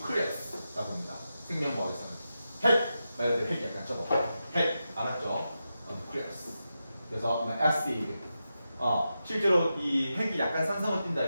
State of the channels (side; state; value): both; inverted; correlation -0.89